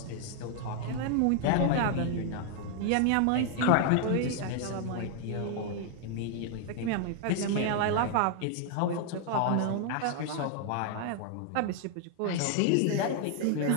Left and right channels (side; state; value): both; different; correlation 0.00